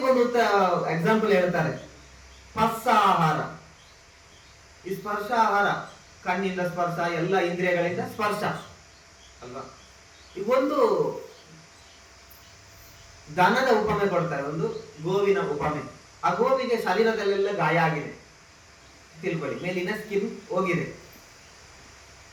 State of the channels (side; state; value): both; identical; correlation 1.00